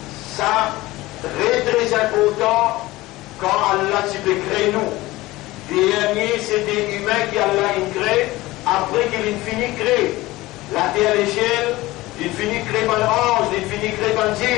Ça, très important quand Allah peut créer nous. Dernier, c'est des humains qui Allah crée, après qu'il finit de créer. La terre et les ciels, il finit de créer par l'ange, il finit de créer par le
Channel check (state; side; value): quieter; right; 18.9 dB